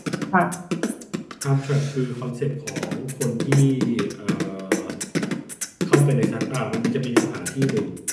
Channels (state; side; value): identical; both; correlation 1.00